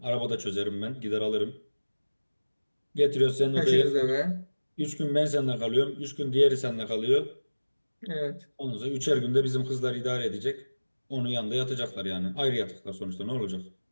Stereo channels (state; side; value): inverted; both; correlation -1.00